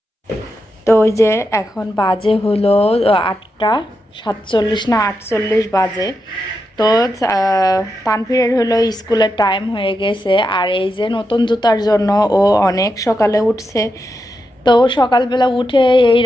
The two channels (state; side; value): normal; both; correlation 0.86